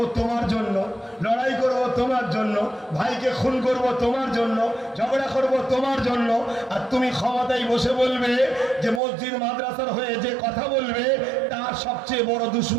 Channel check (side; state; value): left; drops out; at 9.0 s